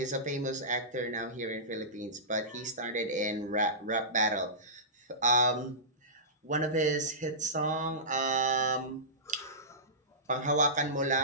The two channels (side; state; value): both; normal; correlation -0.20